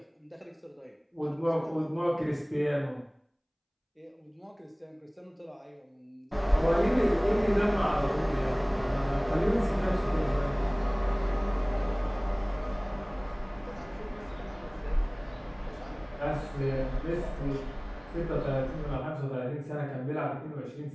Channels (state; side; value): identical; both; correlation 1.00